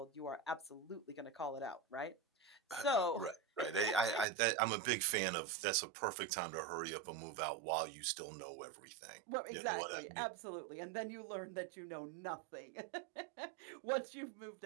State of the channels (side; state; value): left; drops out; at 4.2 s